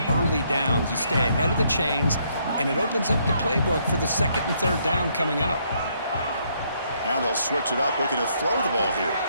early downs. You stay ahead of the chains, and it opens up the playbook for the second and third down coming up. Now they'll switch it up, looking to throw the ball here.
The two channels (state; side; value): inverted; both; correlation -0.71